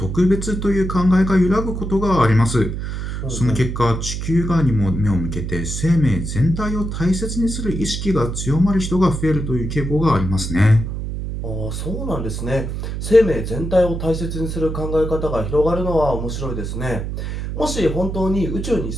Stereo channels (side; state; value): right; noise; hum, 4 dB below the sound